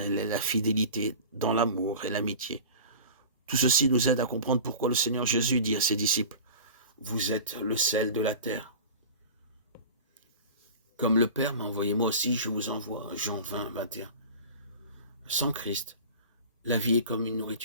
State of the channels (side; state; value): both; inverted; correlation -0.36